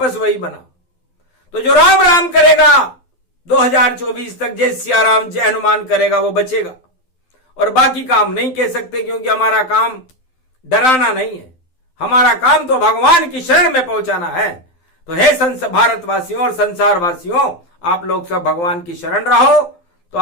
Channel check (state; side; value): late; right; 12 ms